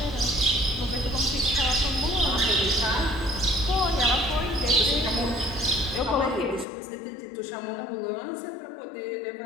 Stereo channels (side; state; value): right; drops out; at 6.7 s